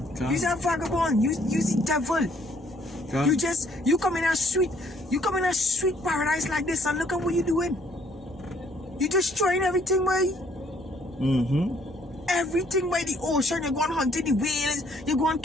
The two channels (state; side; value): normal; both; correlation 0.64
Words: You're a vagabond, you're the devil. You come in a sweet paradise like this, and look at what you're doing. You're destroying everything, boy. Everything by the ocean. You're going hunting the whales. You're going